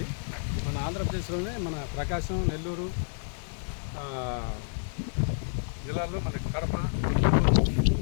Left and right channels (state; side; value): silent; right; digital silence